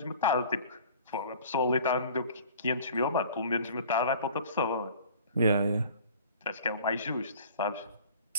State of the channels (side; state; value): both; inverted; correlation -0.47